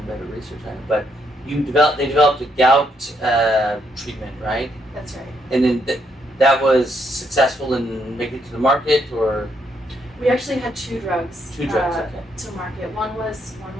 better research on it, but they developed a gout treatment, right? That's right. And then that was successful in making it to the market, or? We actually had two drugs. Okay. To market. One was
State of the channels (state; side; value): normal; both; correlation 0.75